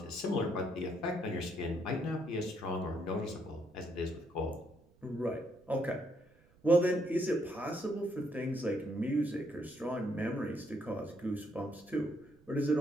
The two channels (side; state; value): right; noise; rumble, 29 dB below the sound